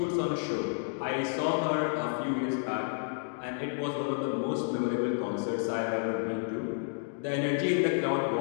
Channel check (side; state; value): right; silent; digital silence